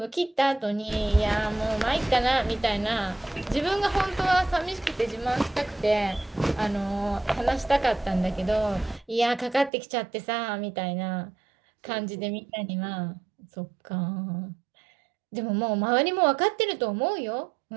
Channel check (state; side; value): drops out; left; at 9.7 s